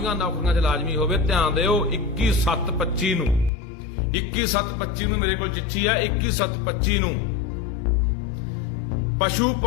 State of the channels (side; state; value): right; drops out; at 3.5 s